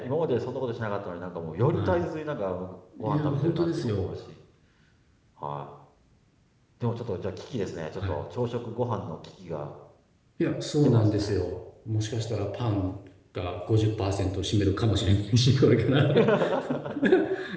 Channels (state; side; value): identical; both; correlation 1.00